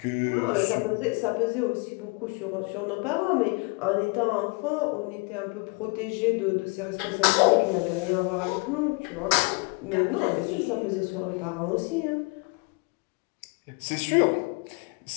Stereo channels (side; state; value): right; quieter; 30.5 dB